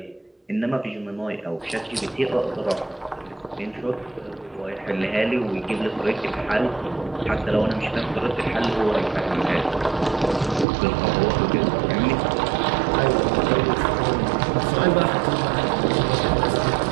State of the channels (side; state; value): left; drops out; at 10.7 s